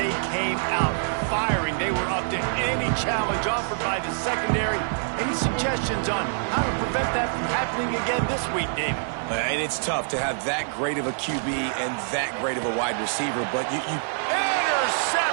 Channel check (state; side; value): silent; left; digital silence